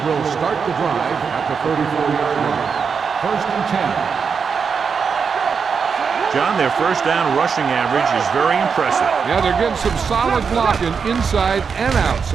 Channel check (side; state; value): left; quieter; 6.0 dB